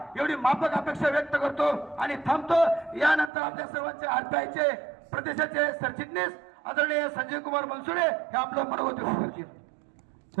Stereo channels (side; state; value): left; drops out; at 3.3 s